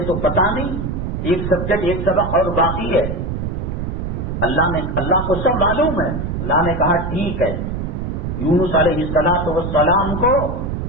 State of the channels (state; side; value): noise; right; rumble, 3 dB below the sound